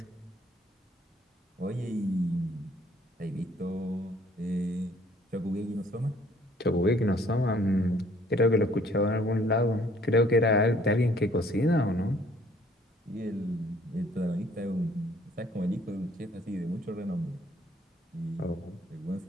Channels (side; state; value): both; normal; correlation 0.60